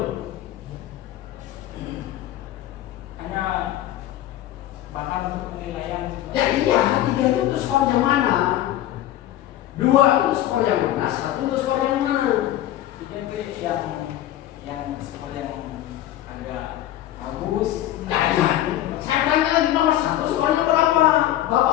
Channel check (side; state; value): right; quieter; 13.2 dB